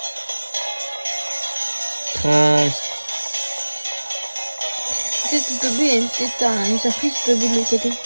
Trace. Peut-être que Toby a peut-être une surprise de l'autre côté.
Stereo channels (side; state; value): both; inverted; correlation -1.00